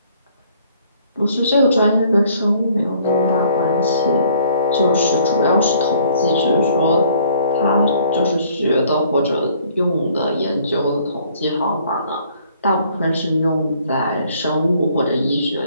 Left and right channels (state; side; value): inverted; both; correlation -0.60